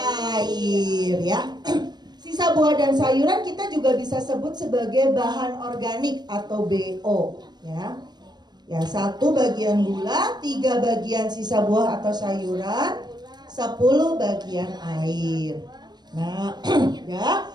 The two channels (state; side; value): late; left; 0.20 ms